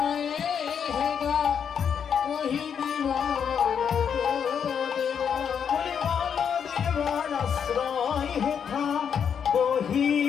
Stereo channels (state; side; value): quieter; right; 7.5 dB